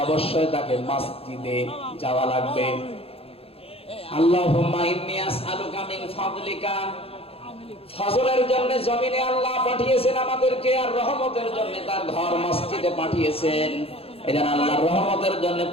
অবশ্যই তাকে মসজিদে যাওয়া লাগবে। আল্লাহুম্মা ইন্নী আসআলুকা মিন ফাদলিকা। ফজলের জন্য জমিনে আল্লাহ পাঠিয়েছেন আমাদেরকে, আর রহমতের জন্য তার ঘর মসজিদে পাঠিয়েছেন। এজন্য আল্লাহর রহমতের জন্য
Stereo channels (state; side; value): late; right; 0.28 ms